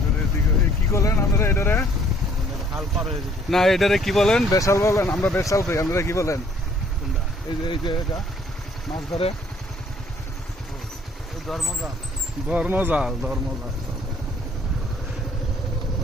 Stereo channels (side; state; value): both; normal; correlation 0.61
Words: কি বলেন আপনারা এটারে? না এটারে কি বলেন? বেশাল বলেন? আমরা বেশাল কই, আপনারা কি বলেন? এই যে এটা মাছ ধরে ধর্মজাল।